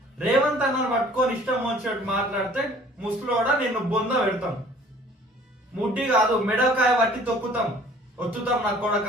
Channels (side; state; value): both; normal; correlation 0.52